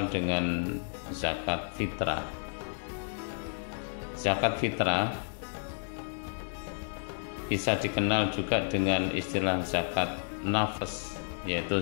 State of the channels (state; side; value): silent; right; digital silence